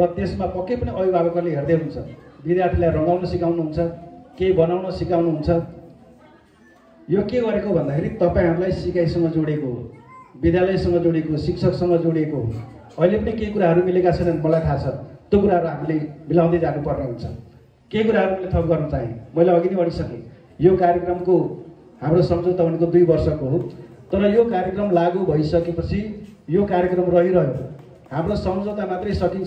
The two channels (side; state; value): both; identical; correlation 1.00